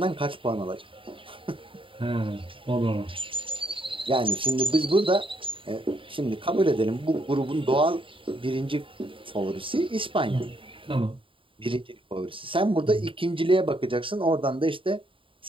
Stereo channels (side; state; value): left; late; 0.25 ms